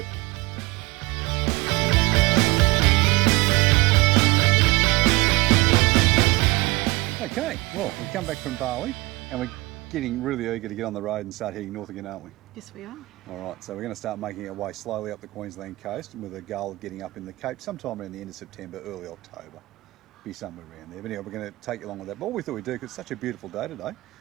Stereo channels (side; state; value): left; quieter; 22.6 dB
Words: Okay, well, we've come back from Bali and we're getting really eager to get on the road and start heading north again, aren't we? Yes, we are. All right, so we're going to start making our way slowly up the Queensland coast with a goal of getting up in the Cape sometime around the end of September, early October. Be somewhere around there. But anyway, we're going to take you along with that. But what we thought we'd do, because it's such a beautiful day today,